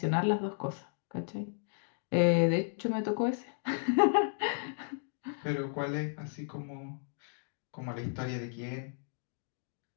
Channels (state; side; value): silent; right; digital silence